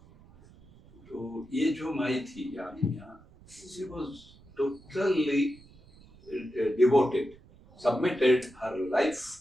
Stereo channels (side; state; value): right; noise; rumble, 24 dB below the sound